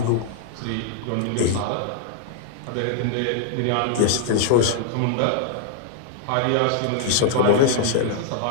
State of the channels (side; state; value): both; different; correlation -0.01